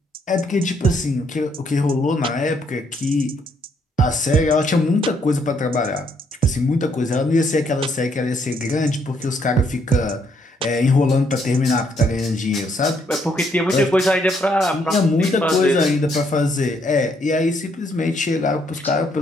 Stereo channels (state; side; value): normal; both; correlation 0.71